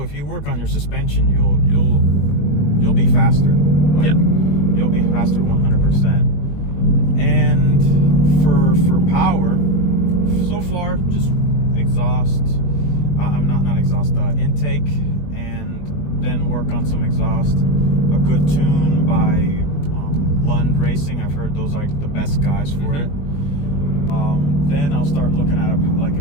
if you work on your suspension, you'll be faster. Like, yeah. You'll be faster 100%. And for power, so far, just exhaust. I'm not exhaust. Intake, and then work on some exhaust. A good tune by Lund Racing. I've heard those are the best guys for it. Then I'll start looking at like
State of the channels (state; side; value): late; right; 21 ms